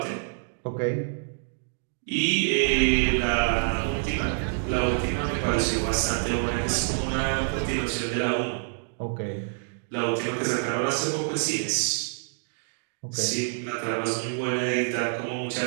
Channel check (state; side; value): silent; left; digital silence